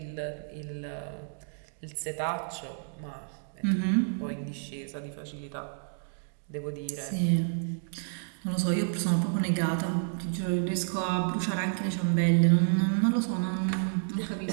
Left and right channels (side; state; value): left; silent; digital silence